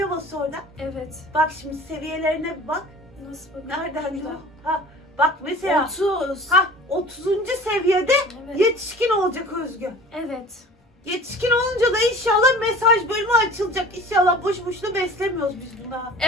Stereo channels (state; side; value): normal; both; correlation 0.43